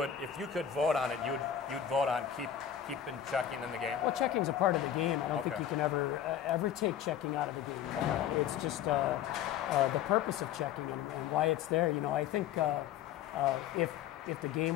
if you could vote on it, you'd vote on keeping checking in the game? Well, checking's a part of the game. I don't Okay. think you can ever take checking out of the game. Okay. It's just the purpose of checking and why it's there. You know, I think if the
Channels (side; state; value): right; quieter; 9.8 dB